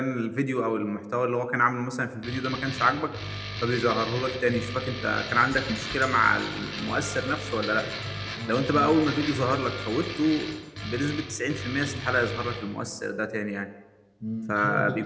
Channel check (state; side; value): identical; both; correlation 1.00